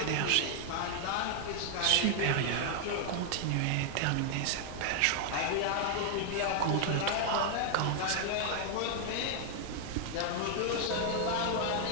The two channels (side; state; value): both; different; correlation 0.00